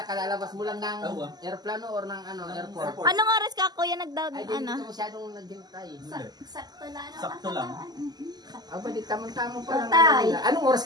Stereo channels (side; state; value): left; late; 0.20 ms